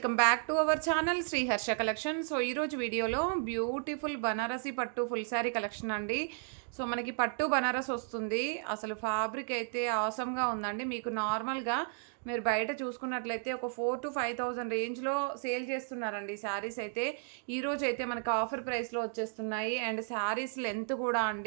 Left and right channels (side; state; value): left; silent; 55 dB below the other